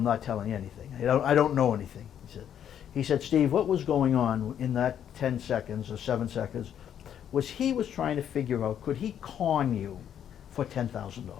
not telling you anything. I don't know anything, he said, Steve, what was going on in that 10 seconds or 7 seconds was he was trying to figure out, could he con you for $10,000?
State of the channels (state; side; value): quieter; right; 9.5 dB